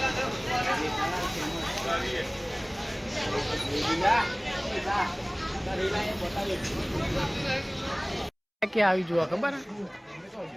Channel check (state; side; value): identical; both; correlation 1.00